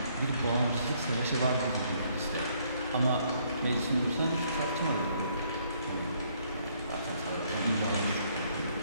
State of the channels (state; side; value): inverted; both; correlation -0.68